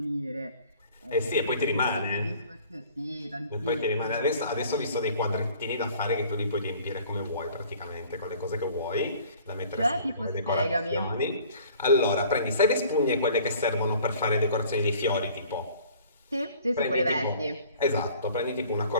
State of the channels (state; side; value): inverted; both; correlation -0.52